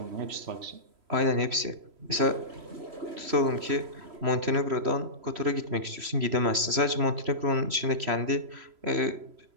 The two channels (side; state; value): left; late; 3.0 ms